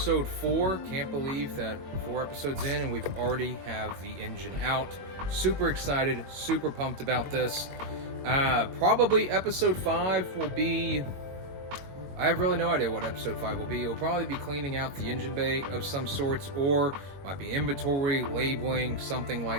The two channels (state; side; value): late; left; 22 ms